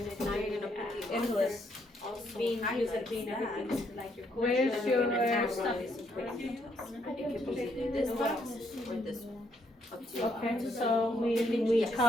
Now you're gonna put in list. also Being used highlight as being that. everything, like your Where's culture. your Stuff is important to us. It could be either this box or this one. Up to you. Okay, so we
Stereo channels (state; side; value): normal; both; correlation 0.73